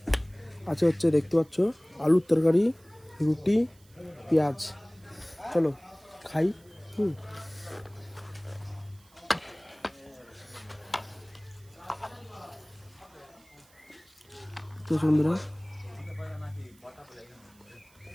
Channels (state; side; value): noise; right; hiss, 29 dB below the sound